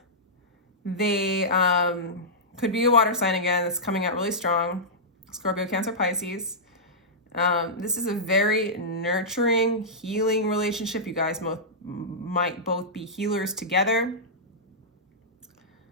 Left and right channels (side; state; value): both; normal; correlation -0.13